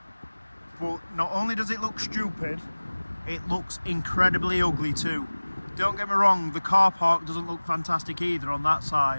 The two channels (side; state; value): both; inverted; correlation -1.00